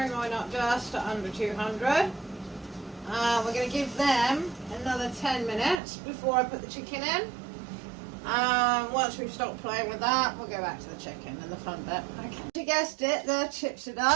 mine up just to under 200. We're going to give them another 10 minutes before I put the chicken in. Once we've stopped playing with that, we'll go back to the chicken and the fun bit. Okay. You guessed it, the chips are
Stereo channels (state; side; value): drops out; left; at 5.8 s